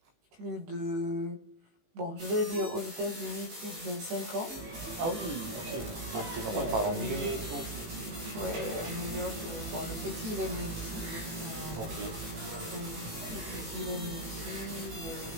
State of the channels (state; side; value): late; left; 18 ms